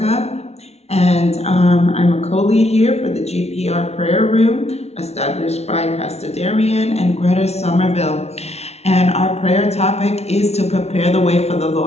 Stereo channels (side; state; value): right; late; 0.31 ms